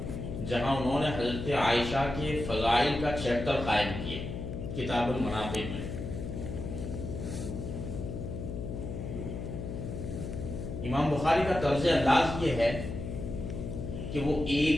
جہاں انہوں نے حضرت عائشہ کے فضائل کا چیپٹر قائم کیا کتاب المناقب میں۔ امام بخاری کا طرز انداز یہ ہے کہ وہ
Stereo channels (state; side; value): noise; left; hum, 6 dB below the sound